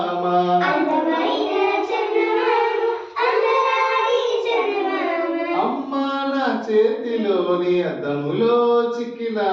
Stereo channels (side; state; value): both; identical; correlation 1.00